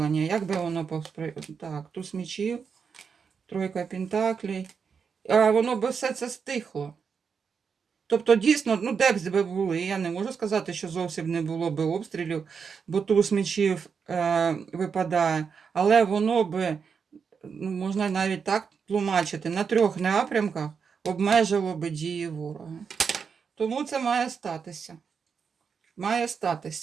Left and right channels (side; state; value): left; quieter; 6.1 dB